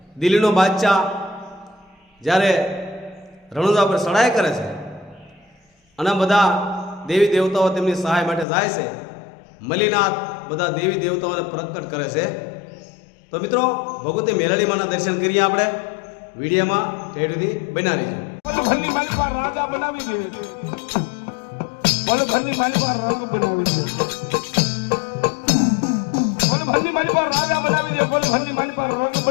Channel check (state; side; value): drops out; right; at 8.5 s